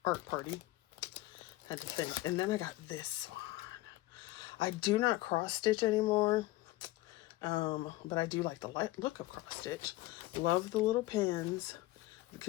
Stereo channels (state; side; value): quieter; right; 18.0 dB